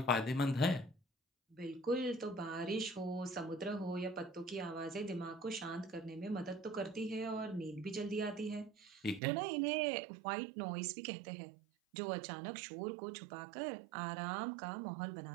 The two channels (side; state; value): left; drops out; at 9.2 s